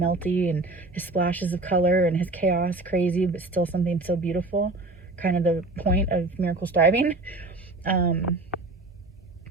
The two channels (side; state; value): left; quieter; 3.1 dB